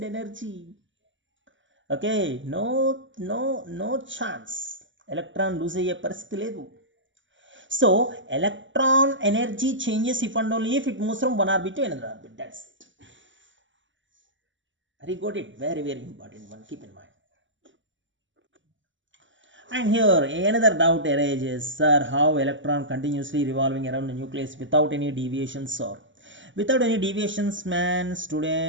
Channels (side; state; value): left; late; 0.55 ms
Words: energy. Okay, no chance. Electron lose అయ్యే పరిస్థితి లేదు. So electron energy changes if and only if it moves from one orbit to another orbit. That's it. Very got it. Very important one. Keep in mind. And here another doubt arises, sir, how electron continuously revolving around the nucleus without any deviations, or without any deviations, man.